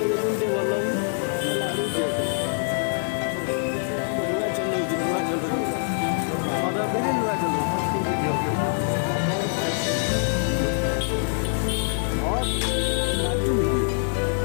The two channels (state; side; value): silent; right; digital silence